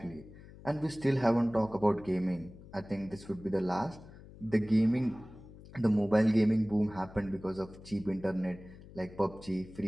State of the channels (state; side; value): noise; left; hum, 18 dB below the sound